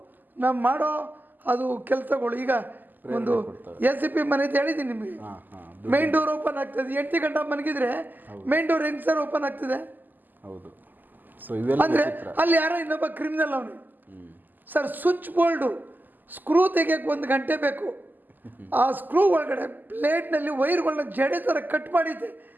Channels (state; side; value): late; left; 0.087 ms